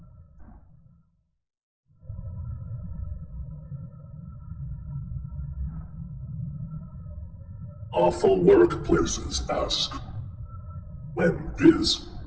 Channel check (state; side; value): identical; both; correlation 1.00